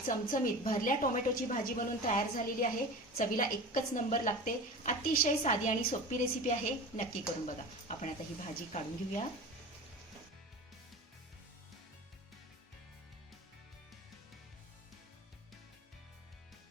चमचमीत भरल्या टोमॅटोची भाजी बनवून तयार झालेली आहे. चवीला एकच नंबर लागते. अतिशय साधी आणि सोपी रेसिपी आहे. नक्की करून बघा. आपण आता ही भाजी काढून घेऊया.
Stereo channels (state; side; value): normal; both; correlation 0.33